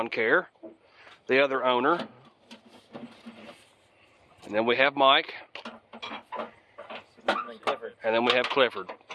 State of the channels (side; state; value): both; identical; correlation 1.00